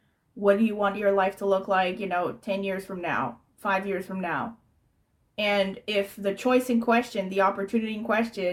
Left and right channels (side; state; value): both; identical; correlation 1.00